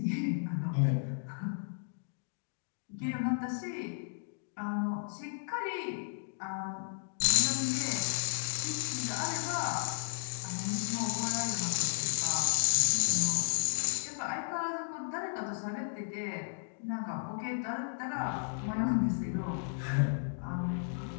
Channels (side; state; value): right; silent; digital silence